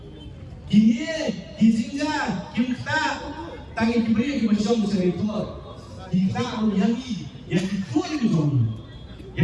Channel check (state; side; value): identical; both; correlation 1.00